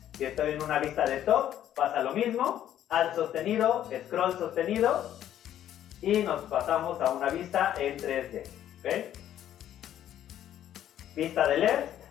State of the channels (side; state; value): right; quieter; 11.3 dB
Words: Si estoy en una vista de top, pasa lo mismo, Alt sostenido, scroll sostenido, y nos pasamos a una vista en 3D. ¿Okay? Vista de